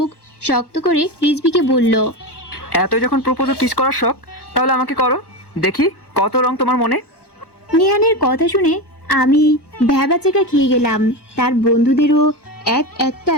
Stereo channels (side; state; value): right; late; 1.1 ms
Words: শক্ত করে রিজবিকে বলল, এত যখন প্রপোজও কিস করার শখ, তাহলে আমাকে করো, দেখি কত রং তোমার মনে। নিহানের কথা শুনে আমি ভ্যাবাচাকা খেয়ে গেলাম। তার বন্ধুদেরও